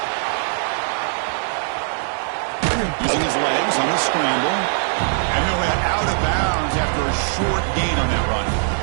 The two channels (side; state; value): left; silent; 65 dB below the other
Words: Using his legs on the scramble. And he'll head out of bounds after a short gain on that run.